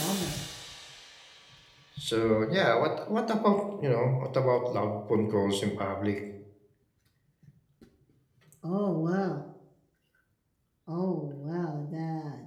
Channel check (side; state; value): both; identical; correlation 1.00